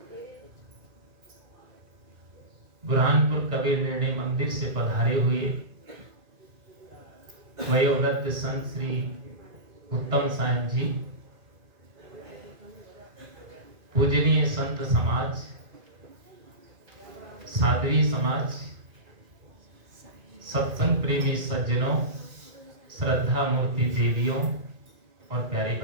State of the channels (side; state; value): left; late; 2.1 ms